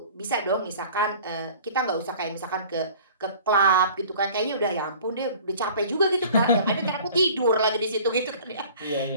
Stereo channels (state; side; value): inverted; both; correlation -0.46